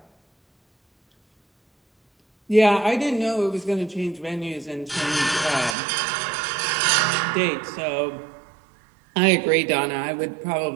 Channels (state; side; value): drops out; left; at 5.8 s